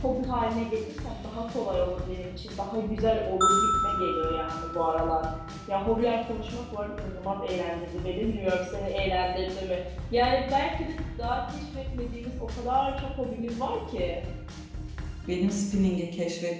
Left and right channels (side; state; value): both; identical; correlation 1.00